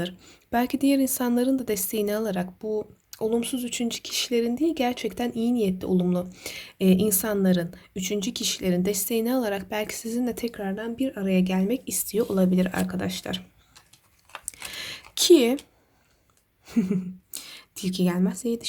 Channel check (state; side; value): identical; both; correlation 1.00